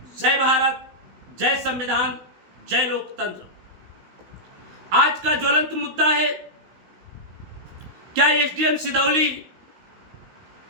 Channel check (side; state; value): left; late; 16 ms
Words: जय भारत, जय संविधान, जय लोकतंत्र। आज का ज्वलंत मुद्दा है, क्या एसडीएम सिदौली